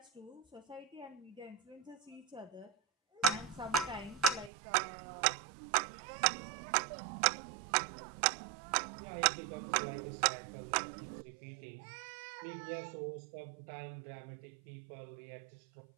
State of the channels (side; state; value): left; drops out; at 4.5 s